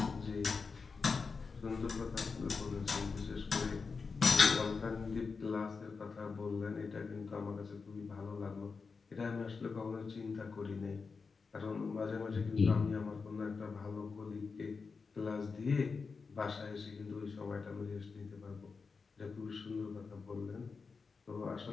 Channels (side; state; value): right; quieter; 4.8 dB